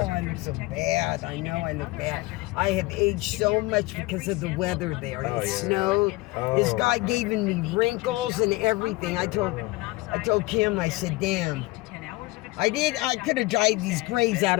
look so bad. I know I look bad. I have aged so much because of the weather there. It snowed. This guy giving me wrinkles and everything. I told Kim, I said, damn. I could have dried these grays out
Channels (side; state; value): right; quieter; 21.4 dB